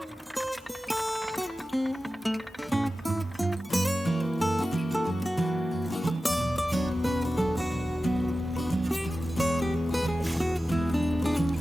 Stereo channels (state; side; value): normal; both; correlation 0.94